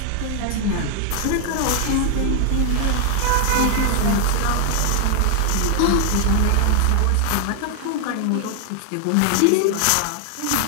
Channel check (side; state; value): both; different; correlation 0.00